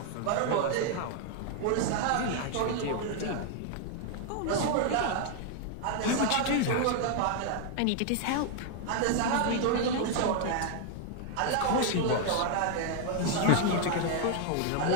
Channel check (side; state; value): both; different; correlation 0.00